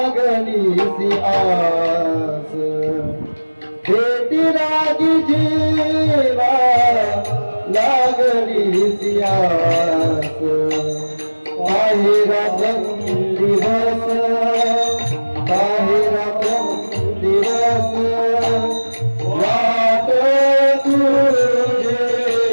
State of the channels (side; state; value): both; inverted; correlation -1.00